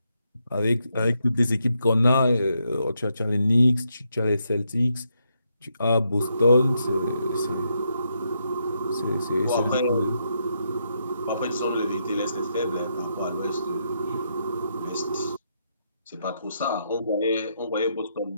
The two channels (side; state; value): both; inverted; correlation -0.80